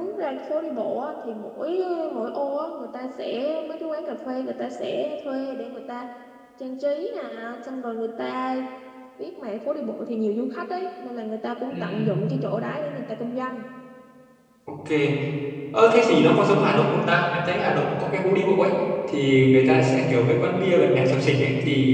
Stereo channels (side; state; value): both; identical; correlation 1.00